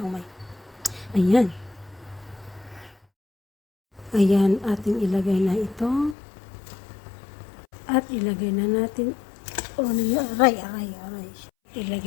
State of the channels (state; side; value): drops out; right; at 6.2 s